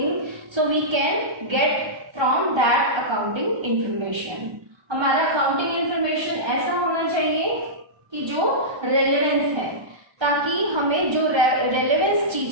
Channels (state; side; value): late; left; 1.3 ms